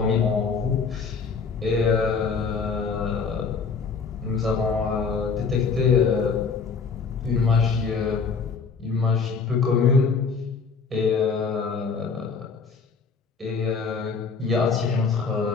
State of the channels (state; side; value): quieter; right; 5.2 dB